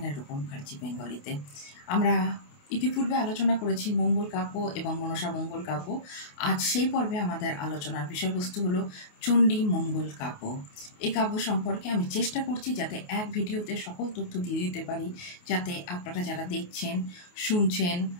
রূপম মুখার্জি বেঙ্গলিতে। আমরা ইতিপূর্বে আলোচনা করেছি মঙ্গল কাব্য এবং মনসা মঙ্গল কাব্য। আজ সেই পর্বে আমাদের আলোচনার বিষয়বস্তু হলো চণ্ডী মঙ্গল কাব্য। এই কাব্য সম্পর্কে আমি চেষ্টা করছি যাতে এক ভিডিওতে সকল তথ্য দিয়ে দিতে পারি, যাতে আপনারা যারা দেখছেন শুনছেন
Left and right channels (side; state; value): right; late; 28 ms